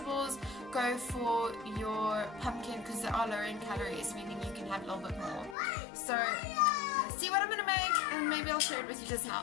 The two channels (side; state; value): right; drops out; at 5.6 s